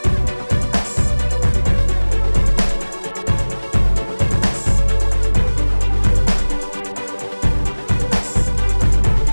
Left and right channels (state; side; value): inverted; both; correlation -1.00